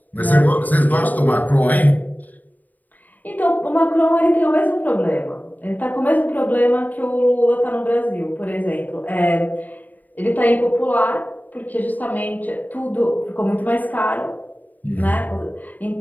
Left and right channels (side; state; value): right; late; 0.082 ms